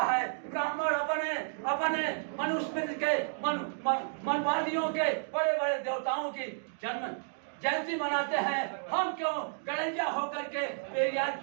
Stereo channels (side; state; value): left; silent; digital silence